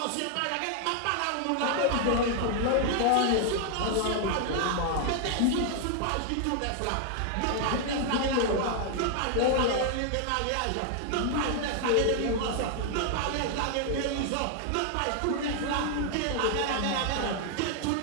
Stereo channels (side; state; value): both; different; correlation 0.00